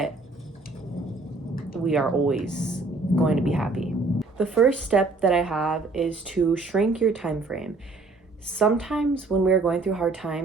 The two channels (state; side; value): quieter; left; 3.5 dB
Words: we are always going to be happy. The first step that I have is to shrink your time frame. Sometimes when we're going through hard